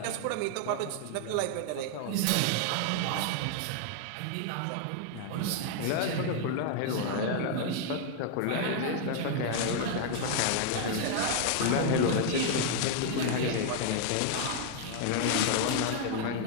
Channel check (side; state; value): both; different; correlation 0.00